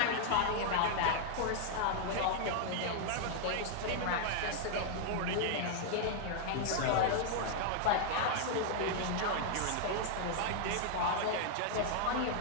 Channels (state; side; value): different; both; correlation -0.01